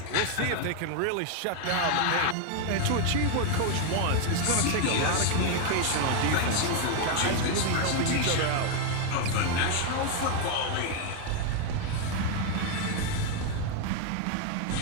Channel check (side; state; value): both; different; correlation 0.01